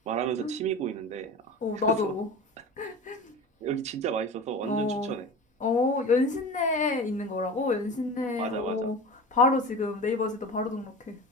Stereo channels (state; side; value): normal; both; correlation 0.32